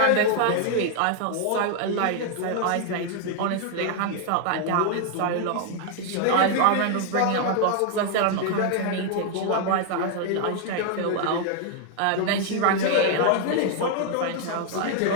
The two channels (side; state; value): both; different; correlation 0.00